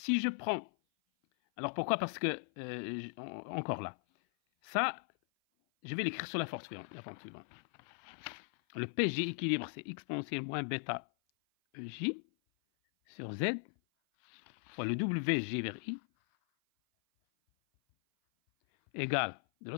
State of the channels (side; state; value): right; silent; 53 dB below the other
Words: je prends... Alors, pourquoi? Parce que, encore là, ça, je vais l'écrire sur la forme suivante. Le PG équilibre, c'est exponentielle moins bêta EJ sur Z fois le WG vers I égale, de